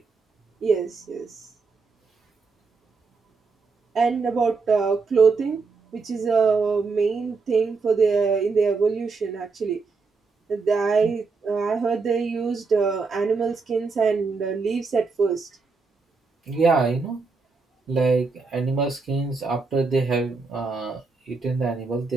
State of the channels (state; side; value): quieter; left; 4.4 dB